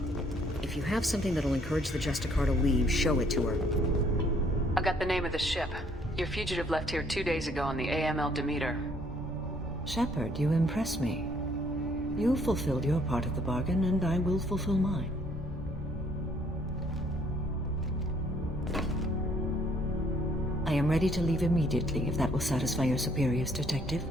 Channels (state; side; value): normal; both; correlation 0.64